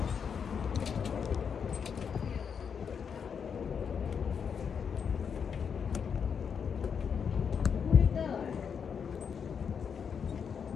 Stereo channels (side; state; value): right; quieter; 6.8 dB